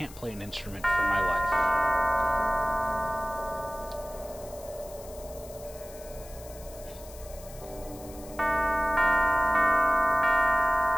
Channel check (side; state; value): left; noise; hiss, 19 dB below the sound